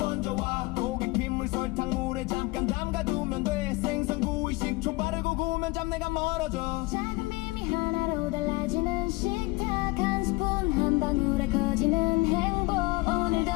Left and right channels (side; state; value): right; quieter; 22.7 dB